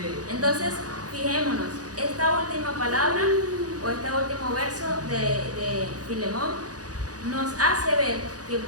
Entonces, fijémonos, esta última palabra o este último verso de Filemón nos hace ver que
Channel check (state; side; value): late; left; 0.67 ms